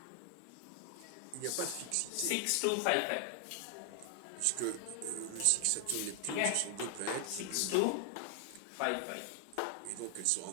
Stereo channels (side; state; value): both; different; correlation 0.00